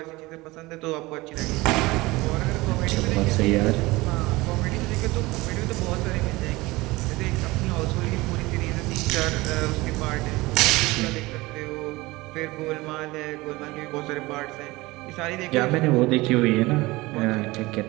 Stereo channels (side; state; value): left; quieter; 21.1 dB